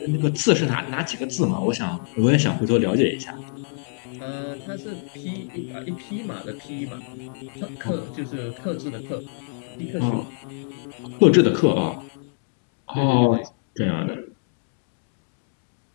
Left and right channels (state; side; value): silent; right; digital silence